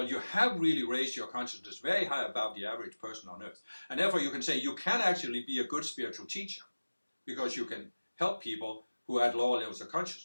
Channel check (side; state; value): both; inverted; correlation -1.00